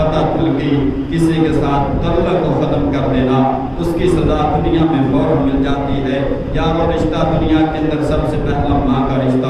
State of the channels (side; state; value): both; identical; correlation 1.00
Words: کی، کسی کے ساتھ تعلق کو ختم کر دینا، اس کی سزا دنیا میں فوراً مل جاتی ہے۔ یارو رشتہ دنیا کے اندر سب سے پہلا ماں کا